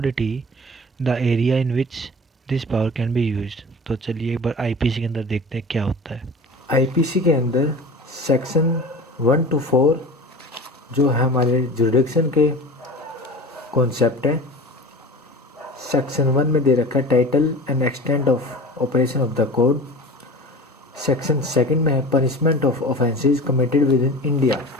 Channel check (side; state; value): both; normal; correlation 0.35